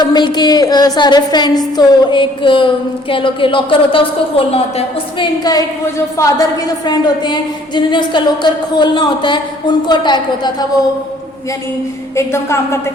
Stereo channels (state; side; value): normal; both; correlation 0.58